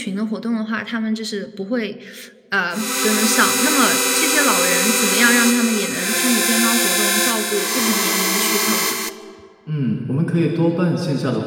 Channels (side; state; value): both; identical; correlation 1.00